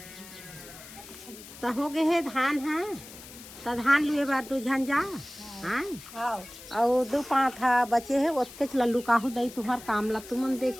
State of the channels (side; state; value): left; noise; hiss, 16 dB below the sound